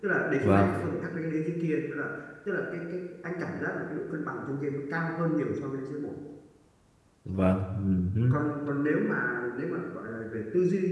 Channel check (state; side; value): identical; both; correlation 1.00